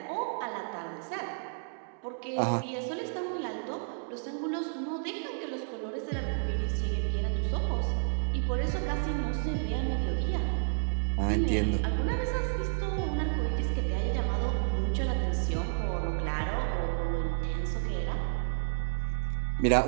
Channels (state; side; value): silent; left; 57 dB below the other